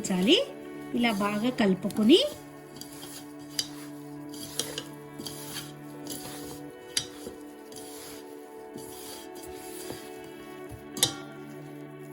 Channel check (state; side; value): identical; both; correlation 1.00